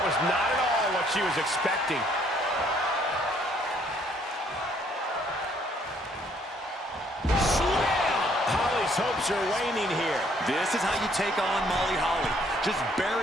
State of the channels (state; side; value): normal; both; correlation 0.65